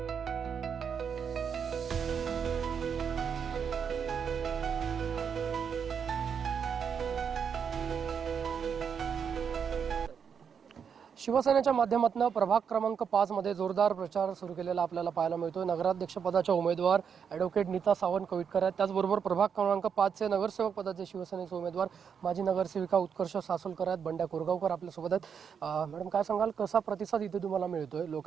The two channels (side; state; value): left; quieter; 7.1 dB